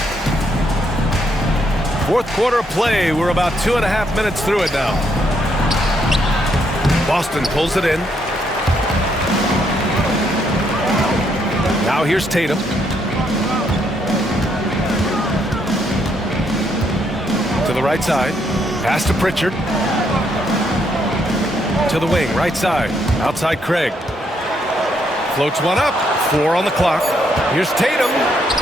Fourth quarter play. We're about 2.5 minutes through it now. Boston pulls it in. Now here's Tatum. To the right side. Pass to Pritchard. To the wing, right side. Outside Craig. Floats one up. 4 on the clock. Here's Tatum.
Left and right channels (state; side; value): normal; both; correlation 0.74